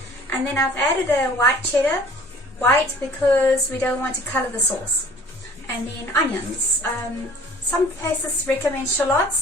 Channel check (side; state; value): both; normal; correlation 0.51